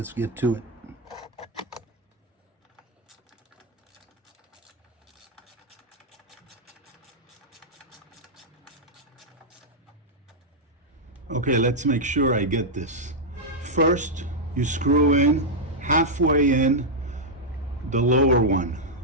get to it. Okay, let's make sure I get this. First, you screw in halfway in the lower one.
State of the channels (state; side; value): normal; both; correlation -0.04